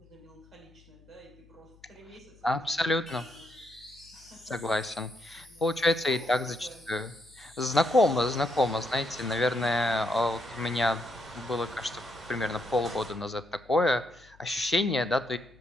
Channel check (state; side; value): noise; left; hum, 27 dB below the sound